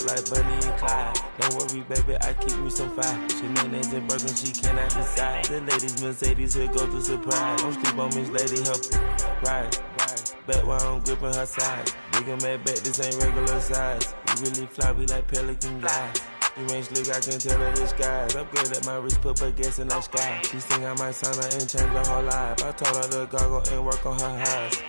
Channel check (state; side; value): inverted; both; correlation -1.00